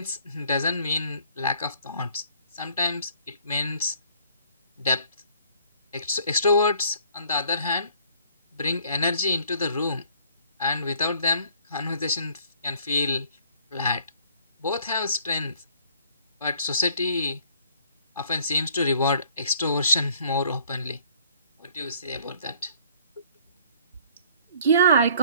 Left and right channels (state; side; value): inverted; both; correlation -0.58